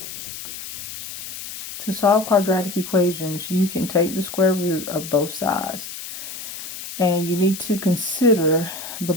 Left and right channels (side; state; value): left; noise; hiss, 10 dB below the sound